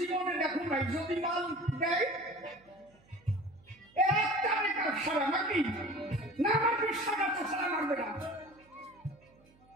দেখো নাই, যদি মাল দেয় একটা বেকার সারা নাকি না, আমার বিশ্বাস আছে সারা মারবে না।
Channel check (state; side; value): noise; right; hum, 30 dB below the sound